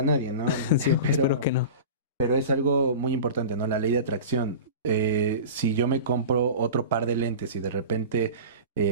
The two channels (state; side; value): inverted; both; correlation -0.32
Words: a nadie, ¿no? Sí, espero que Pero, no. pero es algo muy importante, ¿no? La ley de atracción. Si yo me compro otro par de lentes y de repente